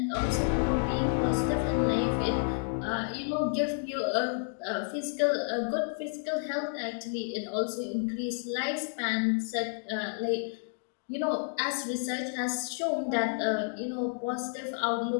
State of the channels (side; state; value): right; silent; digital silence